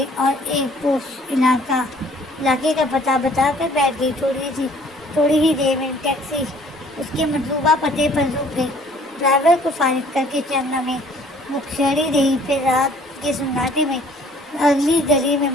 اور ایک پوش علاقے کا پتہ بتا کر بیٹھ گئی۔ تھوڑی ہی دیر میں ٹیکسی اس کے مطلوبہ پتے پر رک گئی۔ ڈرائیور کو فارغ کر کے چند لمحے وہ کھڑی رہی، پھر رات کے سناٹے میں اگلی گلی میں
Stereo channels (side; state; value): both; normal; correlation 0.56